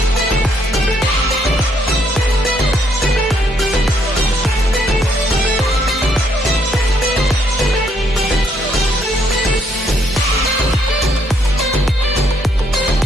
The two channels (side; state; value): both; normal; correlation 0.71